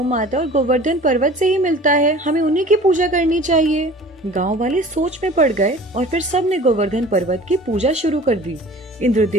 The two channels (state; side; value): normal; both; correlation 0.44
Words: माता और गोवर्धन पर्वत से ही मिलता है। हमें उन्हीं की पूजा करनी चाहिए। गांव वाले सोच में पड़ गए और फिर सब ने गोवर्धन पर्वत की पूजा शुरू कर दी।